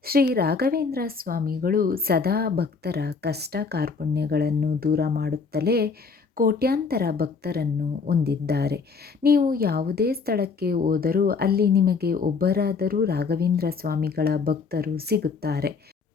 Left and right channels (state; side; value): quieter; right; 4.9 dB